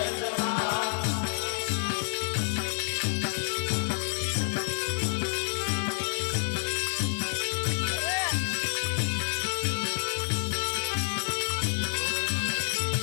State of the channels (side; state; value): right; silent; 59 dB below the other